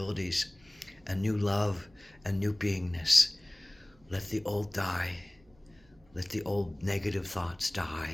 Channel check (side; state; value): right; noise; hum, 30 dB below the sound